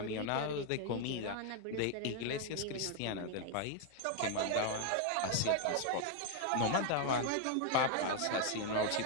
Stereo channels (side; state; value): both; different; correlation 0.00